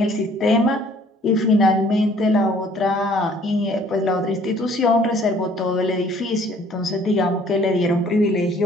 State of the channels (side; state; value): both; normal; correlation 0.57